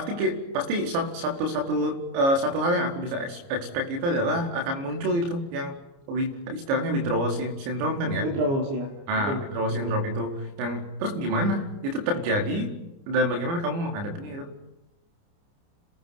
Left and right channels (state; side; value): late; left; 29 ms